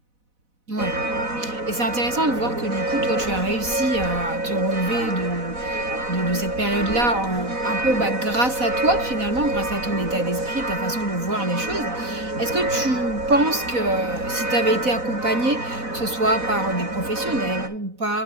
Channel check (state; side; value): late; left; 4.0 ms